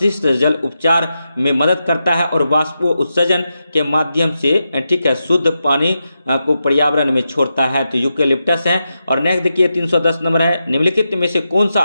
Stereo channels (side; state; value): both; inverted; correlation -0.88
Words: जल उपचार में मदद करता है और वाष्प उत्सर्जन के माध्यम से ठीक है शुद्ध पानी को पर्यावरण में छोड़ता है? तो यूकेलिप्टस है। और नेक्स्ट देखिए 310 नंबर है, निम्नलिखित में से कौन सा